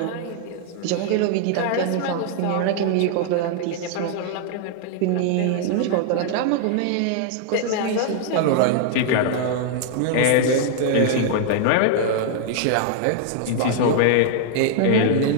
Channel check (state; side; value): different; both; correlation 0.00